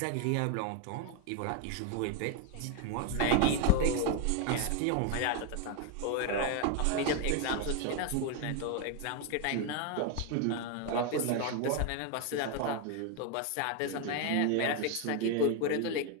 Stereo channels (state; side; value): different; both; correlation 0.01